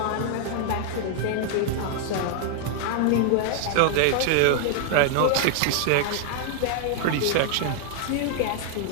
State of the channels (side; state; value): both; different; correlation 0.00